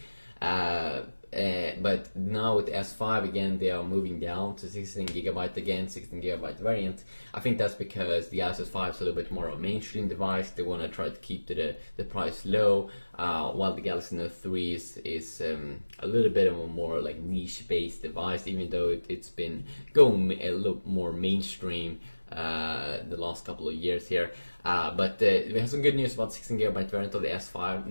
But now with S5 again, they are moving down to 16 GB again, 16 GB variant. I think that's because the Galaxy S5 is a little bit more of a mainstream device. They want to try to keep the price low, while the Galaxy Note 3 is a little bit of a more like niche-based device, even though it's been going a little more mainstream the last couple of years here. But we have some good news about 16 GB variant of the S5.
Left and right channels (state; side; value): inverted; both; correlation -1.00